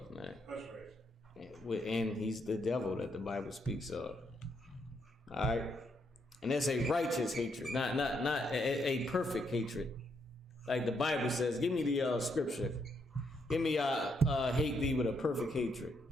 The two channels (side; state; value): both; normal; correlation 0.76